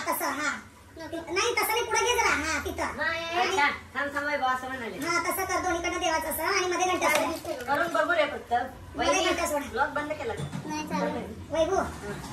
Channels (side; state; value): both; identical; correlation 1.00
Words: तसं हा नाही तसं नाही पुढे घे जरा हा तिथं थांब थांब वैभव असं म्हणाले हा तसं कर दोन्हीकडनं देवाचं असं आणि मध्ये घंटा करून बघू रे फक्त. ब्लॉग बंद केला नाही वैभव